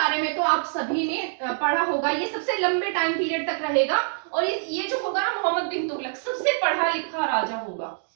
में तो आप सभी ने पढ़ा होगा, ये सबसे लंबे टाइम पीरियड तक रहेगा। और ये जो होगा ना मोहम्मद बिन तुगलक, सबसे पढ़ा लिखा राजा होगा।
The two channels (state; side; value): silent; left; digital silence